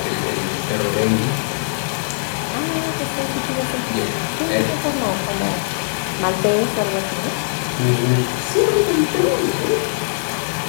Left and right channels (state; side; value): silent; right; 65 dB below the other